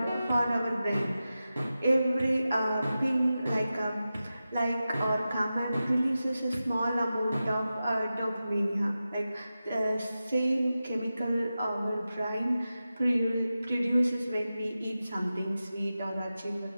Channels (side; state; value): both; inverted; correlation -0.93